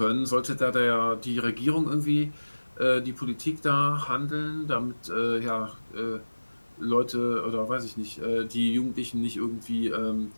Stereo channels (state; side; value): inverted; both; correlation -1.00